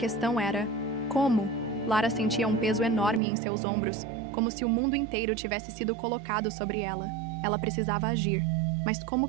era, como? Lara sentia um peso enorme em seus ombros, como se o mundo inteiro tivesse sido colocado sobre ela. Ela precisava agir. Mas como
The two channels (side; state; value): left; drops out; at 3.2 s